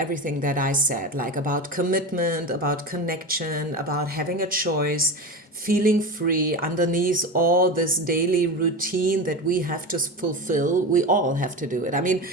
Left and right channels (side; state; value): both; normal; correlation 0.24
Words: that I said, like about commitment, about connection, about having a choice, feeling free underneath all this daily routine that we have to fulfill. We all have to do it. I mean,